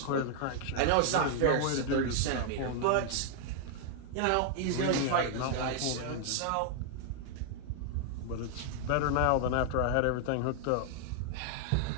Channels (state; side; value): different; both; correlation 0.00